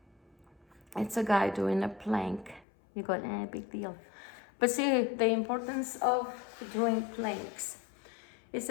It's a guy doing a plank. You go, big deal. But see the importance of doing planks. It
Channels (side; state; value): right; drops out; at 2.7 s